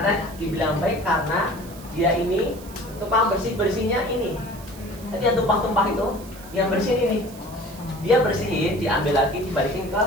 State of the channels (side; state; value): right; noise; hiss, 19 dB below the sound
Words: dibilang baik karena dia ini tukang bersihnya ini. Jadi yang tumpah-tumpah itu, yang bersihin ini. Dia bersihin, diambil lagi, dibalikin ke